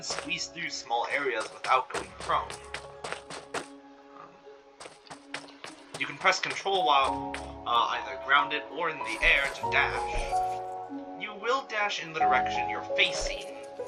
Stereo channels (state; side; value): identical; both; correlation 1.00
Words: squeeze through small areas without going prone. You can press control while either grounded or in the air to dash. You will dash in the direction you're facing.